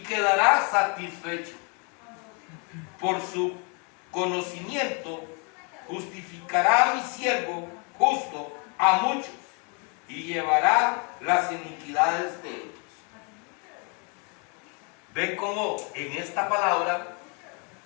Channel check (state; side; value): quieter; right; 35.6 dB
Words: quedará satisfecho. Por su conocimiento justificará a mi siervo justo a muchos y llevará las iniquidades de ellos. Ven cómo en esta palabra